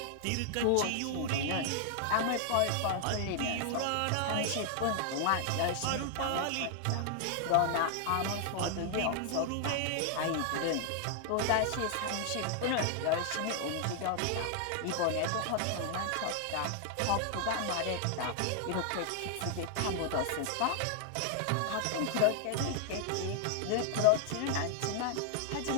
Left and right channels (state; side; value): different; both; correlation 0.00